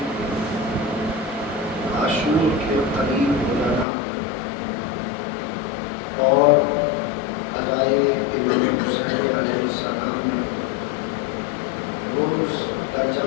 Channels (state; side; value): drops out; right; at 3.9 s